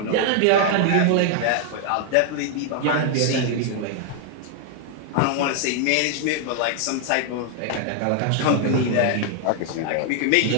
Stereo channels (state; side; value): different; both; correlation 0.00